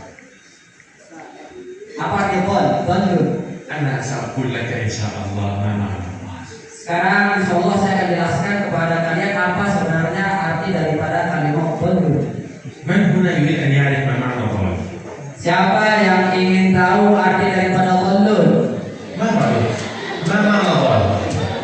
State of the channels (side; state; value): both; identical; correlation 1.00